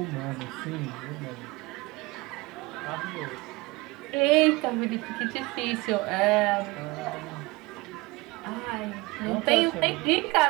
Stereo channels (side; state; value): left; quieter; 23.1 dB